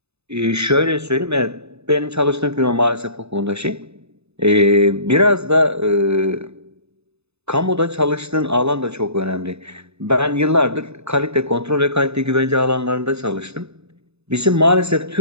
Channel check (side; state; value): left; late; 0.80 ms